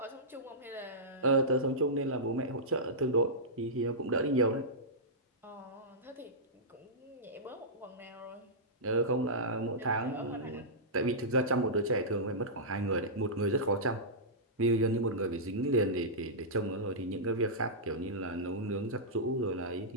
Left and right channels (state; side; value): normal; both; correlation -0.14